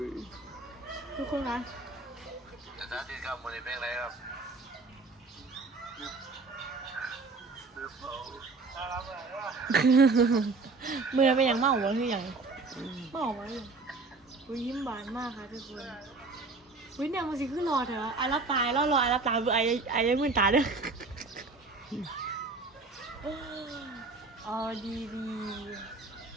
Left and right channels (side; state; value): left; quieter; 3.8 dB